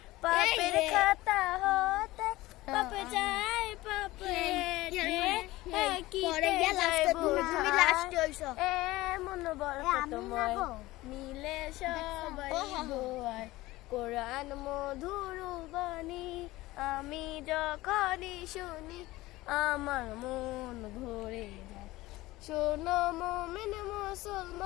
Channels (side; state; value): right; quieter; 18.6 dB